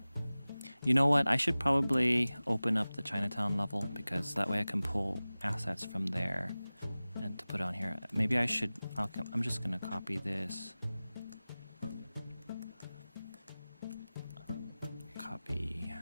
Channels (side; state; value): both; inverted; correlation -0.98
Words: You know what? I should probably open up the Chinatown level because that way I can pull assets from there and to put on here. Maybe I should. I'm just gonna copy this. Copy.